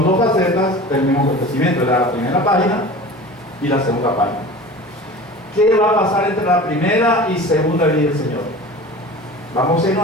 dos facetas del mismo acontecimiento: la primera página y la segunda página. ¿Qué va a pasar entre la primera y segunda venida del Señor? Vamos a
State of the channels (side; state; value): both; normal; correlation 0.38